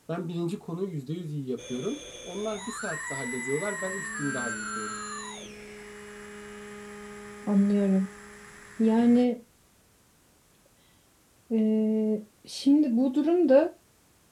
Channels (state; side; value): identical; both; correlation 1.00